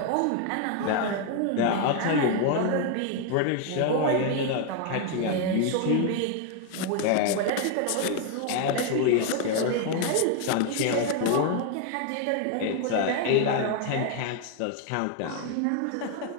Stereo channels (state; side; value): different; both; correlation 0.00